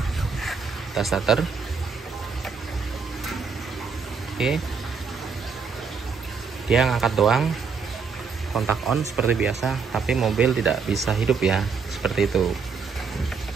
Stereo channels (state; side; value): quieter; left; 5.3 dB